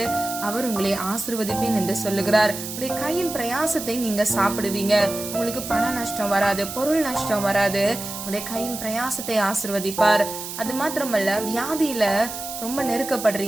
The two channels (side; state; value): right; noise; hiss, 8 dB below the sound